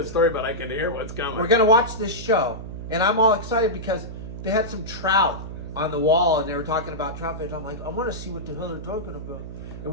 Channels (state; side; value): noise; right; hum, 10 dB below the sound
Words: story, but I can hear what's coming. We're gonna watch this show, and I'm all excited because they had some trout on the wall, and they were talking about trout fish. I'm like, I want to see what the hell they're talking about. And